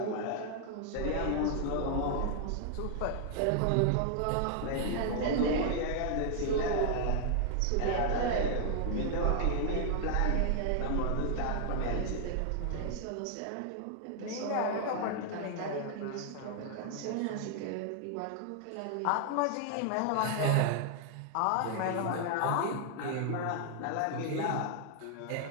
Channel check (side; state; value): both; different; correlation 0.00